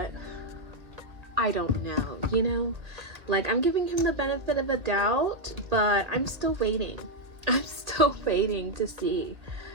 I don't know, you know? Like, I'm giving him the benefit of a doubt, but I'm still waiting. I'm still waiting to see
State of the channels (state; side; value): late; left; 2.0 ms